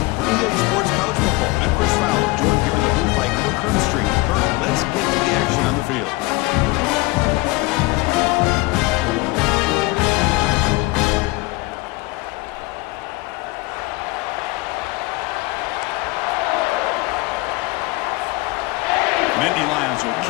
For EA Sports College Football, I'm Chris Fowler, joined here in the booth by Kirk Hearnstreet. Kirk, let's get to the action on the field. Nittany Lions will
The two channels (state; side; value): quieter; right; 22.4 dB